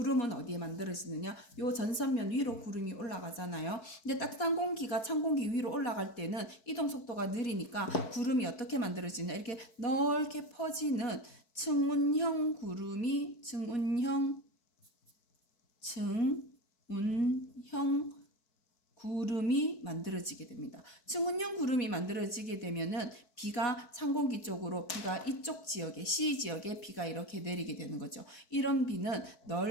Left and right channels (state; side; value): late; right; 4.5 ms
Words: 어디에 만들어지느냐? 요 전선면 위로 구름이 올라가잖아요. 근데 따뜻한 공기가 찬 공기 위로 올라갈 때는 이동 속도가 느리니까 구름이 어떻게 만들어지냐? 이렇게 넓게 퍼지는 층운형 구름이 만들어지게 됩니다. 층운형 구름이 만들어지게 되면은 비가 찬 공기 쪽으로 비가 이쪽 지역에 C 지역에 비가 이렇게 내리게 되는 거죠. 이런 비는